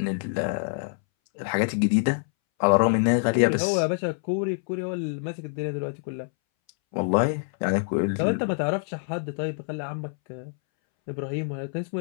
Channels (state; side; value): silent; right; 61 dB below the other